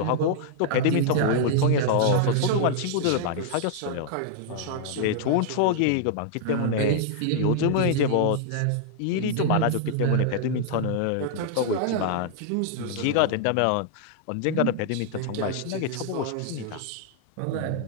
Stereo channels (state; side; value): different; both; correlation -0.01